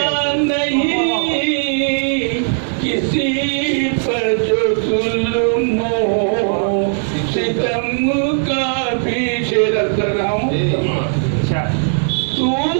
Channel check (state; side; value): silent; left; 68 dB below the other